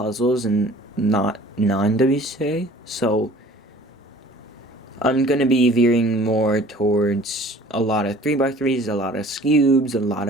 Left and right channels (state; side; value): normal; both; correlation 0.49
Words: and not non-WCA, so I'm going to be veering more towards a lot of 3x3s, a lot of cubes, a lot